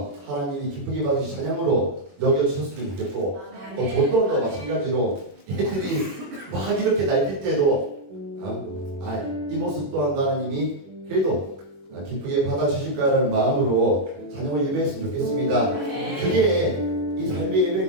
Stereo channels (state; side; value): late; left; 21 ms